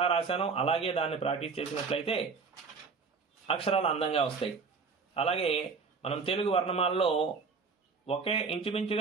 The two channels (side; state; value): left; quieter; 4.9 dB